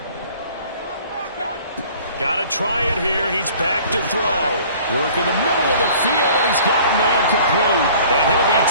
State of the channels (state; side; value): inverted; both; correlation -0.50